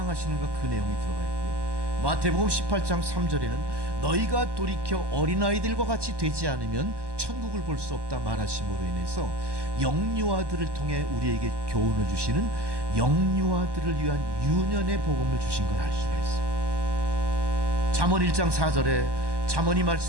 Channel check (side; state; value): left; late; 1.2 ms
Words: 그 내용이 들어가 있고요. 마태복음 18장 3절에는 너희가 돌이켜 어린아이들과 같이 되지 않으면 천국을 볼 수 없다 말하심으로 인해서 영유아들을 통해 우리에게 교훈을 주시는 영유아들을 위한 유년의 복음을 주신 걸 알 수가 있어요. 잠언 1장 4절에 잠언이